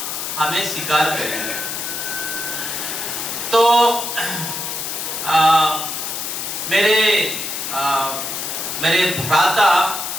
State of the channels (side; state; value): left; noise; hiss, 4 dB below the sound